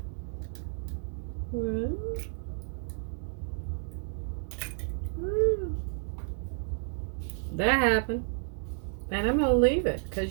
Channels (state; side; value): silent; left; 57 dB below the other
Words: That happened. And I'm going to leave it